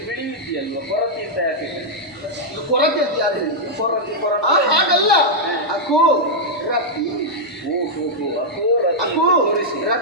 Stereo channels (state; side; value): normal; both; correlation -0.05